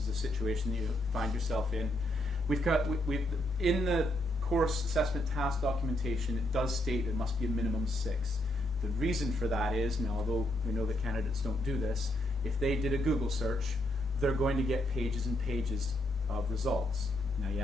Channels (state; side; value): normal; both; correlation 0.76